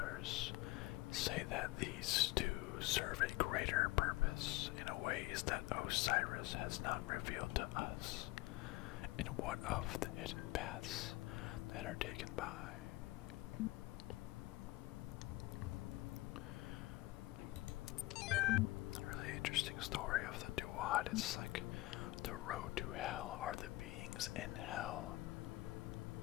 say that these too serve a greater purpose in ways that Osiris has not revealed to us. And what of the hidden paths that are taken by? A really interesting story of the Duat. It's like the road to hell. Are the beings in hell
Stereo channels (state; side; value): quieter; right; 19.7 dB